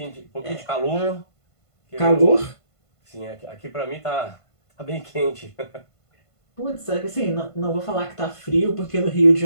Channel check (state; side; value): late; right; 1.5 ms